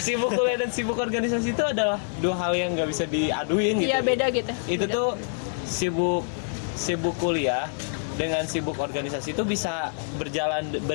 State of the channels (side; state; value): right; silent; digital silence